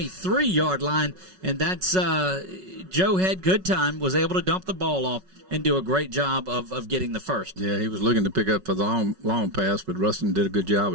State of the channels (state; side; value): late; left; 5.4 ms